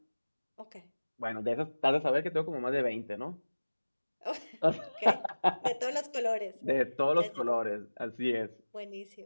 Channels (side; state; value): both; inverted; correlation -1.00